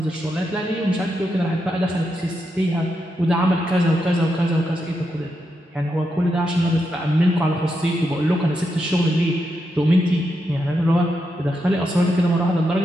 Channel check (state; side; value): normal; both; correlation 0.84